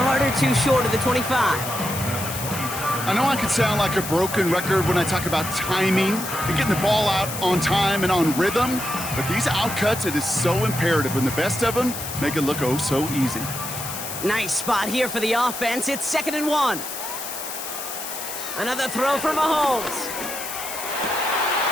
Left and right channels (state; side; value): noise; left; hiss, 7 dB below the sound